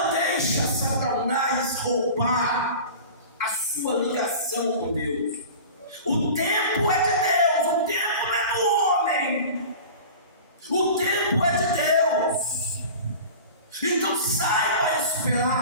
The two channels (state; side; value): inverted; both; correlation -0.37